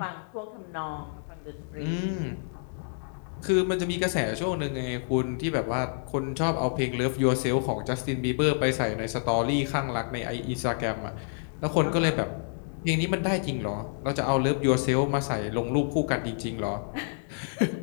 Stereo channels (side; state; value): right; silent; digital silence